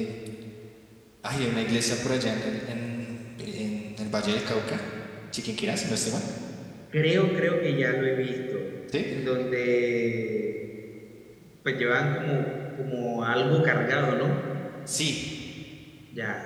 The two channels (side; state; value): both; identical; correlation 1.00